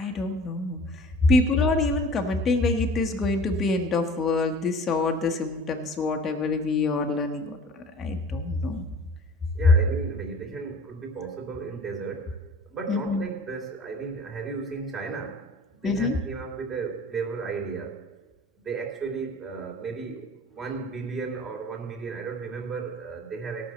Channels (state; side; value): normal; both; correlation 0.45